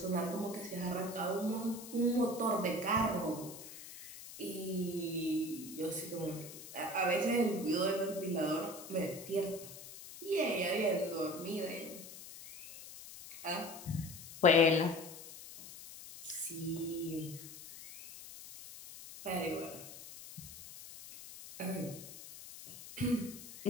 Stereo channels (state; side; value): noise; left; hiss, 14 dB below the sound